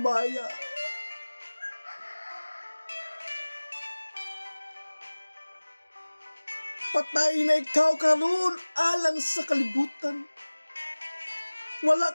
Patay na ikaw karon alang sa kalibutan.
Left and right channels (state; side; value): inverted; both; correlation -1.00